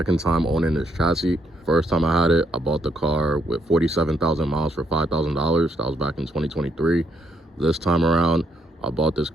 time owning this chassis. First time I had it, I bought the car with 47,000 miles for $5,000. That was back in 2023. This time around, I bought this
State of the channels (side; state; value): both; normal; correlation 0.74